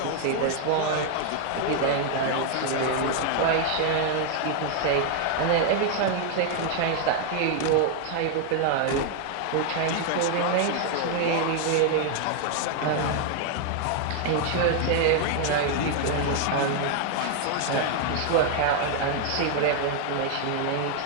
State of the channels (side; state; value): both; different; correlation 0.00